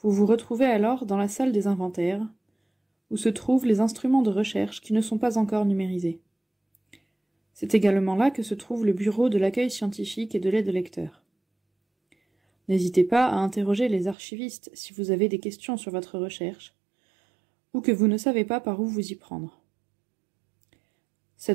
vous retrouvez alors dans la salle des inventaires, où se trouvent les instruments de recherche qui ne sont pas encore numérisés. C'est également là que se trouve le bureau de l'accueil scientifique et de l'aide lecteur. N'hésitez pas à interroger les archivistes si vous avez des questions sur votre recherche, ou que vous ne savez pas par où vous y prendre.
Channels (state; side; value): drops out; left; at 14.2 s